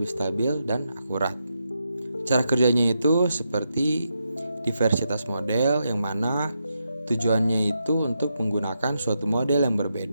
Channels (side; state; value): both; inverted; correlation -0.83